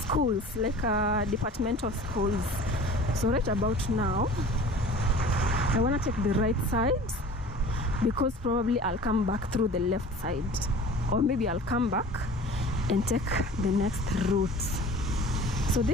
like departmental schools. So right about now, I want to take the right side because probably I'll come back through the left side, or maybe I'll come back and take the next route. So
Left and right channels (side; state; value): both; normal; correlation 0.42